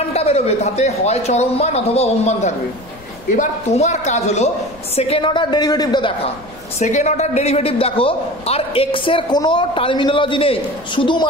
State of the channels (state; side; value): noise; left; rumble, 22 dB below the sound